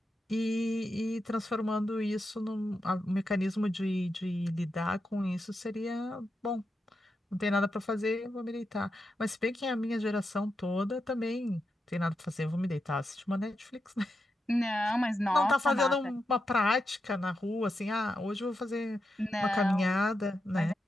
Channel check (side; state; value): both; normal; correlation 0.87